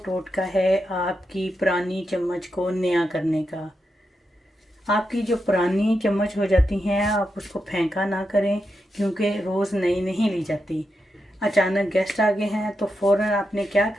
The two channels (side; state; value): both; normal; correlation 0.86